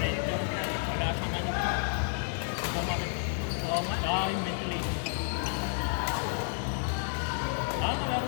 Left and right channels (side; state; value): right; silent; 57 dB below the other